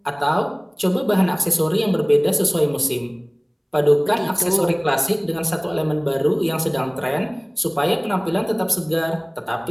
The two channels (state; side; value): identical; both; correlation 1.00